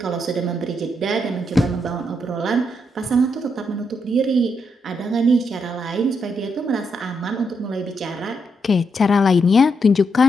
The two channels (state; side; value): normal; both; correlation 0.80